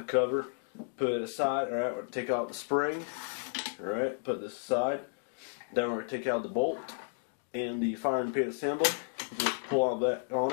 cover, put it aside. Alright, we're going to take out the spring. Alright, put this aside. Then we're going to take out the bolt and the firing pin assembly. Just pull all that on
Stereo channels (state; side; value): silent; right; digital silence